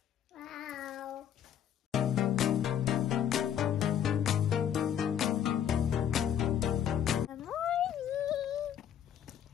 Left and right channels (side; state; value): right; quieter; 9.4 dB